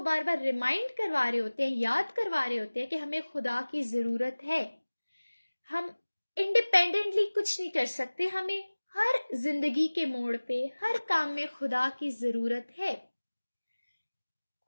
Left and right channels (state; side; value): inverted; both; correlation -1.00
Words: بار بار ریمائنڈ کروا رہے ہوتے ہیں، یاد کروا رہے ہوتے ہیں کہ ہمیں خدا کی ضرورت ہے. ہم انڈیپینڈنٹلی کچھ نہیں کر سکتے، ہمیں ہر زندگی کے موڑ پہ ہر کام میں خدا کی ضرورت ہے.